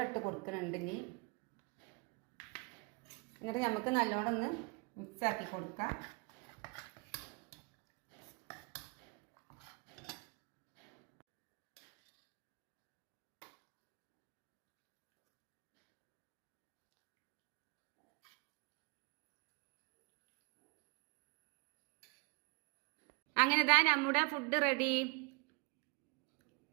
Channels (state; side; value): quieter; left; 30.9 dB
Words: ഇട്ട് കൊടുക്കുന്നുണ്ട്. ഇനി എന്നിട്ട് നമുക്ക് നല്ലോണം ഒന്ന് മിക്സാക്കി കൊടുക്കാം. അങ്ങനെ ഇതാ നമ്മുടെ ഫുഡ് റെഡി.